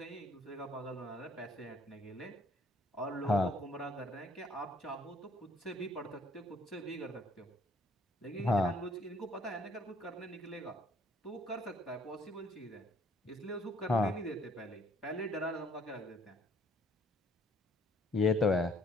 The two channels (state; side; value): normal; both; correlation 0.61